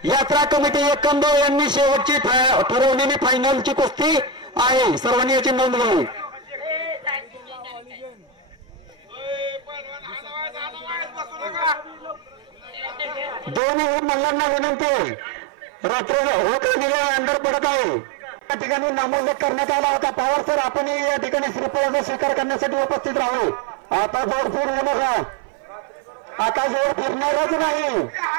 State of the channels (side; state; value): left; drops out; at 13.6 s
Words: यात्रा कमिटी एकंबे यांनी शेवटची ठरवलेली फायनलची कुस्ती आहे. सर्वांनी याची नोंद घ्यावी. दोन्ही मल्लांना विनंती. रात्र अंधार पडत आहे. या ठिकाणी नामोल्लेख करण्यात आला होता. पवार सर आपण या ठिकाणी श्रीफळाचा स्वीकार करण्यासाठी उपस्थित राहावे. आता जोड फिर होऊ नका. आता जोड फिरणारच नाही.